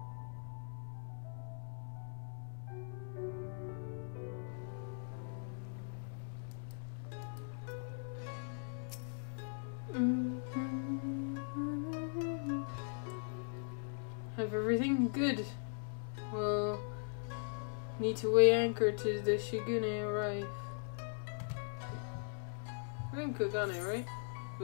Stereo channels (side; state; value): right; silent; 51 dB below the other